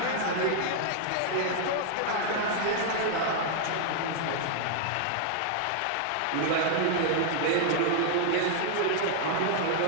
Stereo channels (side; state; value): both; different; correlation 0.00